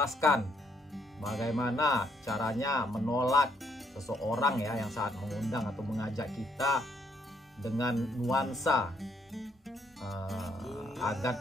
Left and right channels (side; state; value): both; normal; correlation 0.71